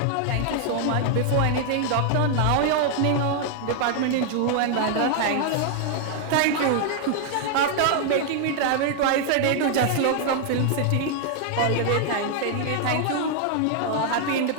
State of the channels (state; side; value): different; both; correlation 0.00